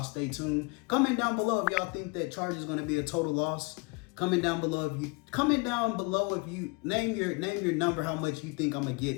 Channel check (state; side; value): quieter; right; 28.9 dB